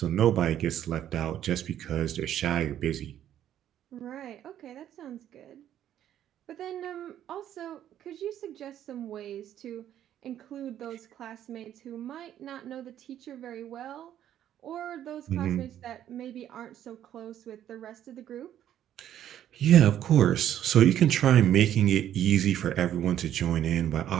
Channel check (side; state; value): left; quieter; 11.0 dB